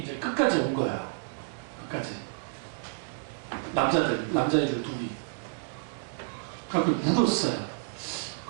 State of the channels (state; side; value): silent; left; digital silence